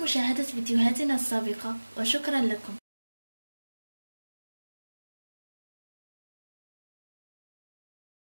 مشاهدة فيديوهاتنا السابقة، وشكرا لكم.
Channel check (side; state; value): both; inverted; correlation -1.00